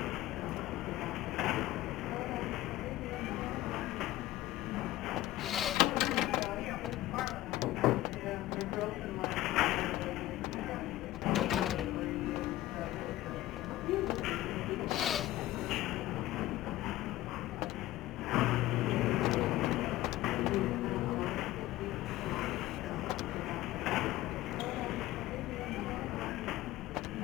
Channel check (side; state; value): right; quieter; 15.8 dB